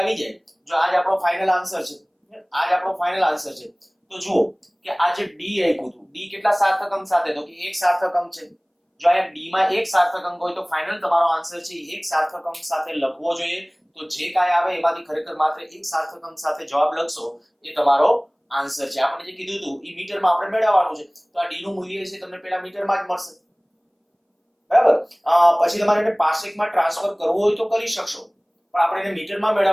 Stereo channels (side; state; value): both; identical; correlation 1.00